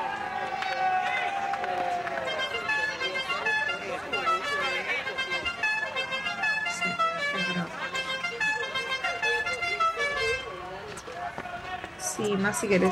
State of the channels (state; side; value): identical; both; correlation 1.00